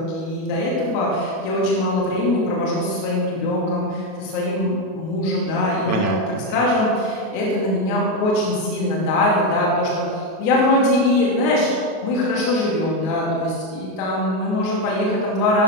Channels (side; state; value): right; late; 38 ms